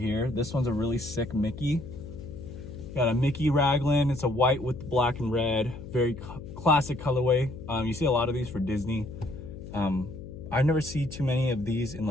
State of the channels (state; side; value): noise; left; hum, 13 dB below the sound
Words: This one's a really sick Mickey. Got a Mickey raglan. It's a white with black and red. Very classic colorway. You see a lot of these for Disney. I never see too many of these in